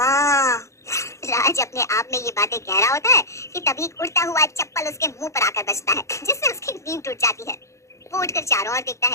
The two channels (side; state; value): right; late; 0.14 ms